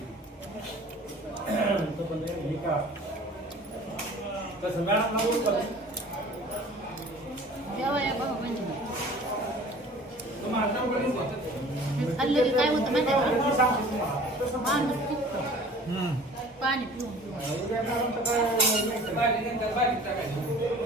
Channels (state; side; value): normal; both; correlation 0.46